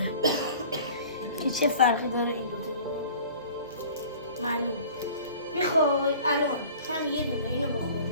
که چه فرقی داره این دوتا معلوم. میخوای الان هم یه دونه اینو بخوریم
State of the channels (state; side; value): inverted; both; correlation -0.46